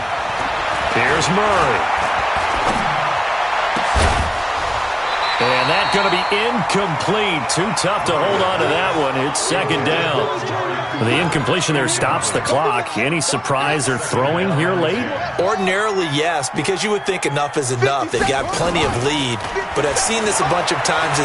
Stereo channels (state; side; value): identical; both; correlation 1.00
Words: Here's Murray. And that's going to be incomplete. Too tough to hold on to that one. It's second down. The incompletion there stops the clock. Any surprise they're throwing here late? Ordinarily, yes, because you would think enough is enough. They've got plenty of lead, but I've seen this a bunch of times